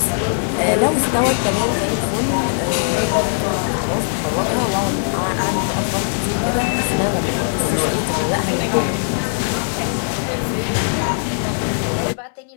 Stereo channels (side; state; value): right; silent; digital silence